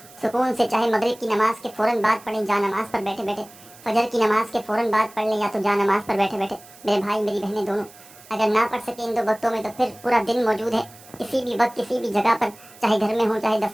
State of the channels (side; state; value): right; noise; hiss, 22 dB below the sound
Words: सुकून से चाहे मगरिब की नमाज के फ़ौरन बाद पढ़ें जा नमाज पर बैठे बैठे, फजर की नमाज के फ़ौरन बाद पढ़ लें, या तो जा नमाज पर बैठे बैठे। मेरे भाई मेरी बहनें दोनों अगर ना पढ़ सके इन 2 वक्तों में, तो फिर पूरा दिन मौजूद है किसी भी वक्त, किसी भी जगह पर, चाहे घर में हो, चाहे